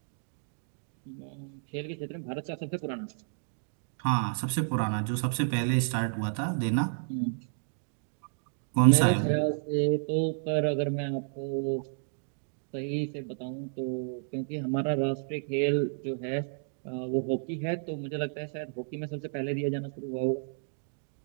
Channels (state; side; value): silent; left; digital silence